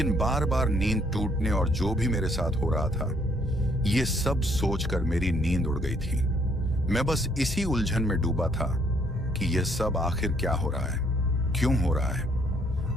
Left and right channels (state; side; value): normal; both; correlation 0.67